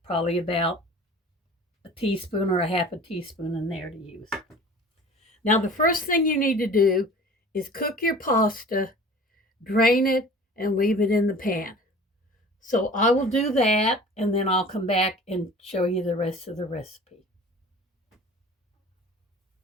probably about a teaspoon or a half a teaspoon in there to use. Now, the first thing you need to do is cook your pasta, drain it, and leave it in the pan. So I will do that, and then I'll come back and show you the rest of the recipe.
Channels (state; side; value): normal; both; correlation 0.43